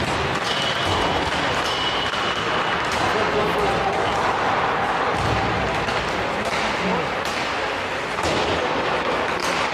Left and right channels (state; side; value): identical; both; correlation 1.00